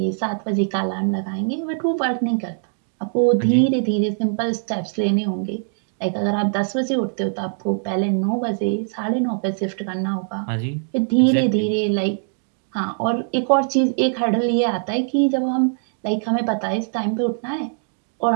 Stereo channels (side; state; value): left; silent; digital silence